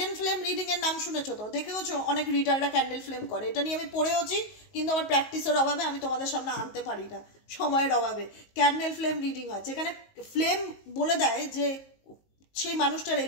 ফ্লেম রিডিং এর নাম শুনেছো তো, দেখেওছো অনেক রিডাররা ক্যান্ডেল ফ্লেম করে। এটা নিয়ে আমি পড়েওছি, কিন্তু আমার প্র্যাকটিসের অভাবে আমি তোমাদের সামনে আনতে পারি না, সময়ের অভাবে। ক্যান্ডেল ফ্লেম রিডিং হয়, যেখানে ফ্লেম বলে দেয় যে সেই মানুষটার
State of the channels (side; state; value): right; late; 19 ms